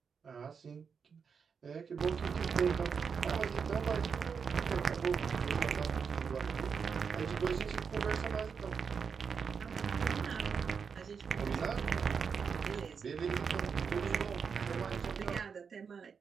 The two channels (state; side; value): quieter; left; 6.1 dB